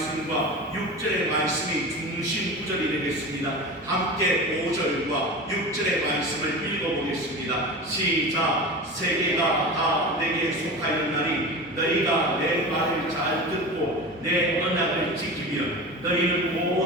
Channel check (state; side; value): normal; both; correlation 0.30